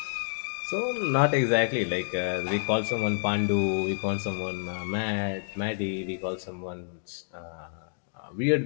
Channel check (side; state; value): right; silent; digital silence